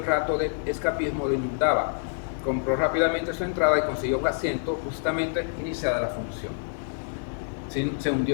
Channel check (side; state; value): right; silent; 60 dB below the other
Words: rato de escapismo lo inundaba. Compró rápidamente su entrada y consiguió un asiento justamente iniciada la función. Se